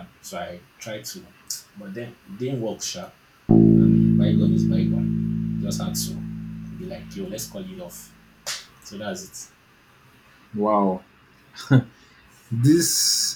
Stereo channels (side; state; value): both; identical; correlation 1.00